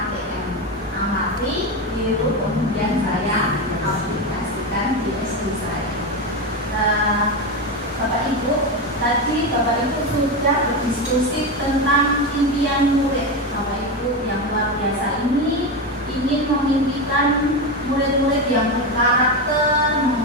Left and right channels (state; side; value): normal; both; correlation 0.15